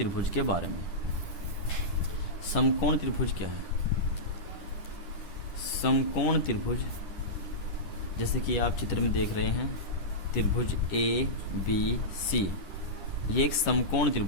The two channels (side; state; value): right; late; 9.9 ms